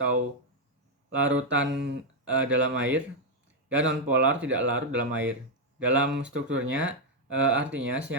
larutan dalam air, dan nonpolar tidak larut dalam air. Dalam strukturnya, artinya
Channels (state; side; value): normal; both; correlation 0.01